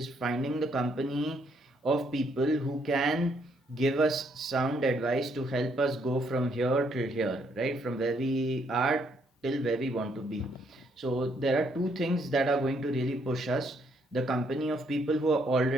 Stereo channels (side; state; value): both; normal; correlation 0.71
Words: finding the company of people who can give us sound advice to help us go from here till here, right? From where we are till where we want to be. So there are two things that are going to really push us: the company of people who are